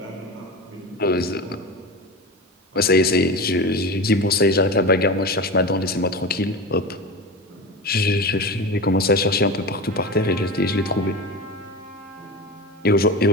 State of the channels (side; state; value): both; normal; correlation 0.26